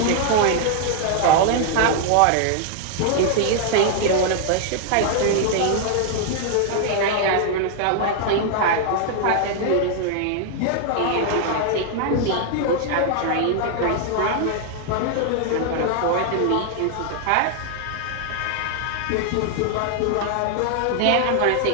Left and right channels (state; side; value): different; both; correlation 0.00